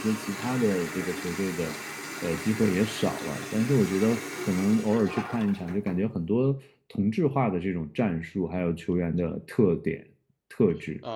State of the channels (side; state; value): both; identical; correlation 1.00